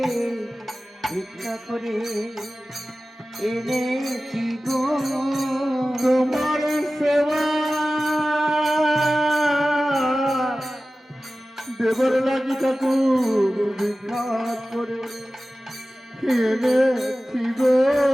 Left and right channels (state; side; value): normal; both; correlation 0.96